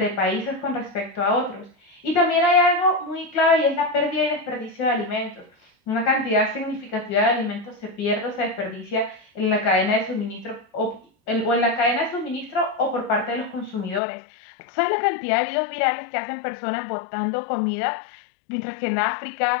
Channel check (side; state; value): right; drops out; at 14.0 s